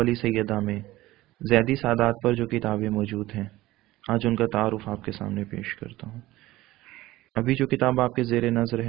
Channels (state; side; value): quieter; left; 17.4 dB